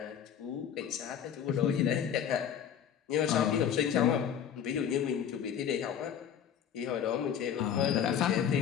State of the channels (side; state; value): right; quieter; 8.7 dB